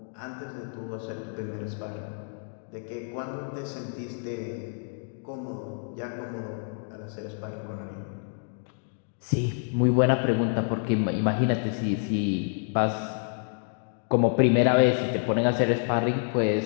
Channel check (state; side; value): silent; right; 59 dB below the other